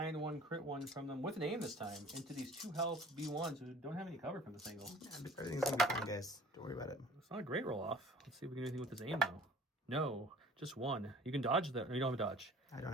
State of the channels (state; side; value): normal; both; correlation 0.48